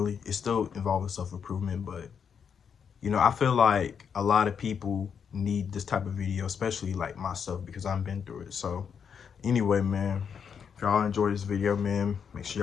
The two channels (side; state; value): right; quieter; 7.1 dB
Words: It's still involving self-improvement, but I feel like a lot of people need this type of video, especially like myself, because I've been through it. So, anyway, man, if y'all enjoy this video, man, make sure